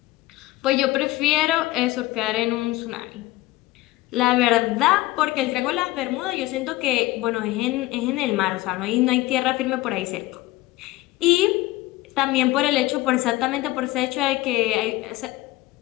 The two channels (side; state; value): right; quieter; 18.0 dB